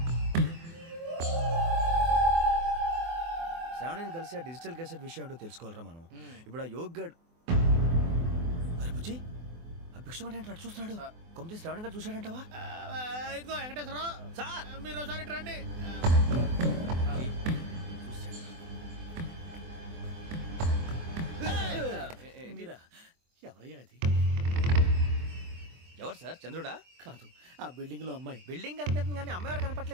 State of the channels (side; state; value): left; late; 24 ms